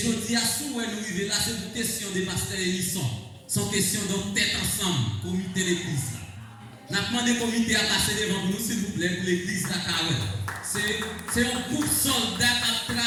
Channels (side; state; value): both; identical; correlation 1.00